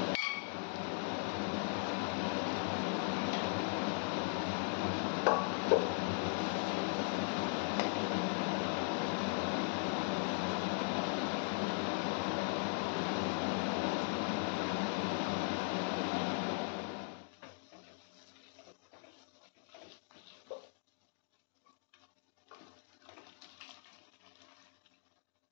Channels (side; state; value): right; silent; 52 dB below the other